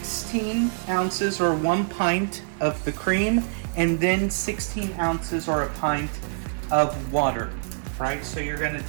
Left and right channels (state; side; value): silent; left; digital silence